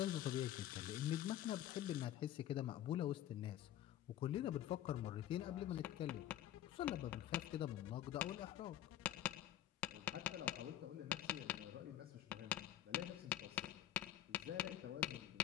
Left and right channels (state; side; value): quieter; right; 12.1 dB